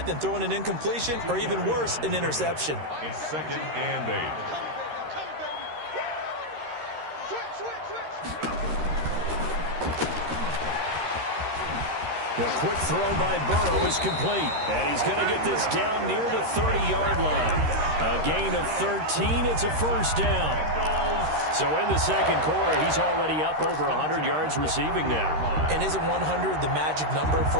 than throwing an incompletion or even worse, an interception. It's second and 8. The quick throw by Burrow is complete. And he's going to get this down near the 30-yard line. A gain of 13. It's a first down. So in the second quarter, he's already up over 100 yards receiving now. And isn't 100 the magic number for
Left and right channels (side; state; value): left; late; 13 ms